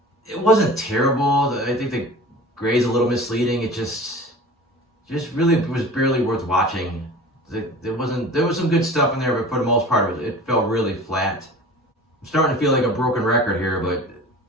It wasn't terrible. I think the grade's a little misleading. It just really was barely worth watching. There was some good stuff in there, but for the most part, it felt really flat. I'm starting to feel like a broken record here, but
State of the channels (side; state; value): both; normal; correlation 0.39